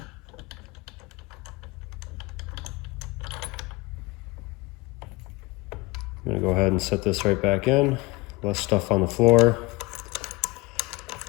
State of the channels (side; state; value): right; quieter; 23.1 dB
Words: I'm gonna go ahead and set this right back in. Less stuff on the floor.